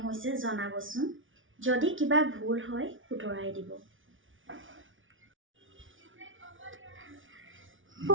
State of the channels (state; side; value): late; left; 0.57 ms